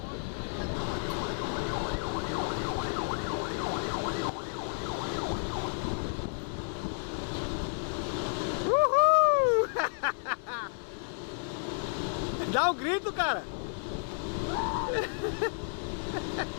Uhul! Dá um grito, cara.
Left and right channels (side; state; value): right; silent; digital silence